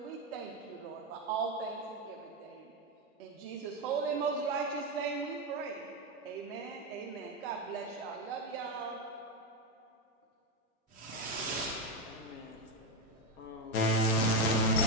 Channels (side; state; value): both; normal; correlation 0.09